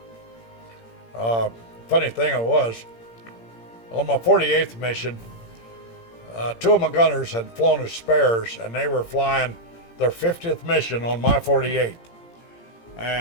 funny thing it was, on my 48th mission, 2 of my gunners had flown as spares, and they were flying their 50th mission on my 48th.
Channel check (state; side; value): late; right; 17 ms